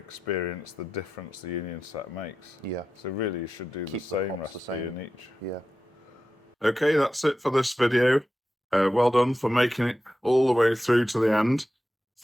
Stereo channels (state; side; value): normal; both; correlation 0.91